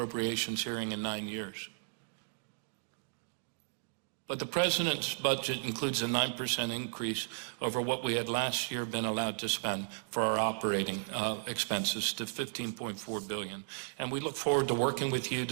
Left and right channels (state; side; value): silent; left; digital silence